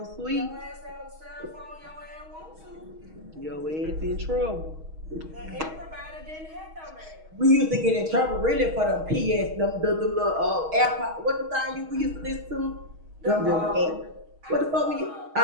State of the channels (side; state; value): left; late; 6.3 ms